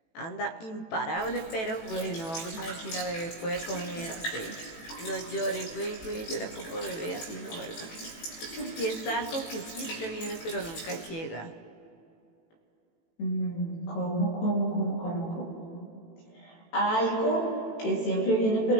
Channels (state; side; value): late; right; 18 ms